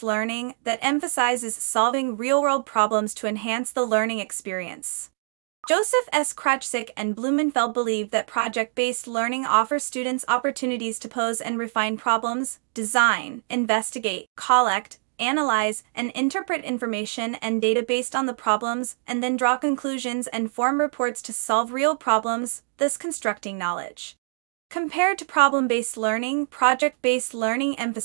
learning that emphasizes solving real-world problems to enhance the learning experience. Joseph S. Krachzik and Blumenfeld believe that project-based learning offers students opportunities to pose and refine problems, design, investigate, collect, analyze, and interpret information and data based on the problems, and then draw conclusions and form reports to solve real problems, thus constructing knowledge. Compared to problem-based learning, project-based learning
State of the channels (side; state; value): left; silent; 61 dB below the other